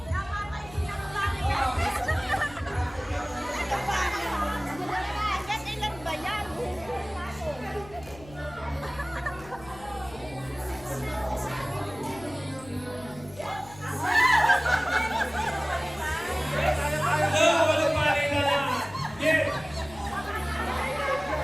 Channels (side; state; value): left; noise; hum, 19 dB below the sound